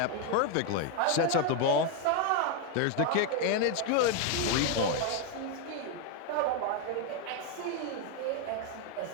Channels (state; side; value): different; both; correlation 0.01